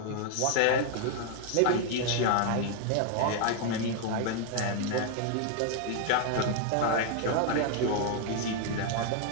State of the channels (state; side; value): different; both; correlation 0.00